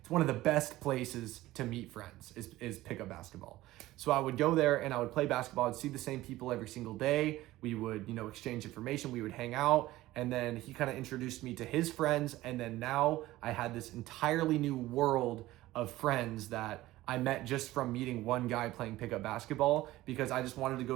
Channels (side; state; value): left; quieter; 16.7 dB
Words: one of the best places to meet friends is pickup basketball. So I would go there and I would play basketball. I'd see the same people every single day. We would, exchange information. We would hang out. And then he kind of introduced me to his friends. And then now I had this entirely new world of friends that I met just from meeting one guy playing pickup basketball because I just wanted to